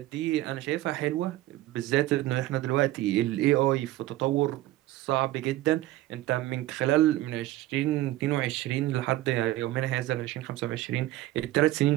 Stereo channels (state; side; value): quieter; left; 16.1 dB